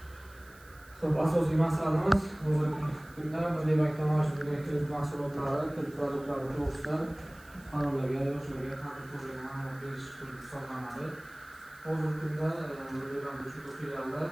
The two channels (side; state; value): right; noise; hiss, 24 dB below the sound